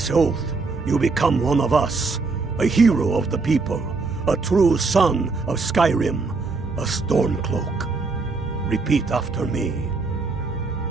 oath, you become one of us, a hero of the people, a true son of Skyrim, a Stormcloak. Repeat after me.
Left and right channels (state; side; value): quieter; left; 4.1 dB